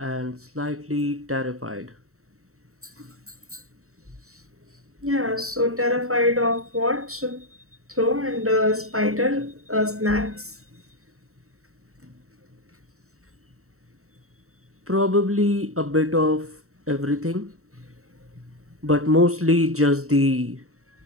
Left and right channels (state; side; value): late; left; 0.64 ms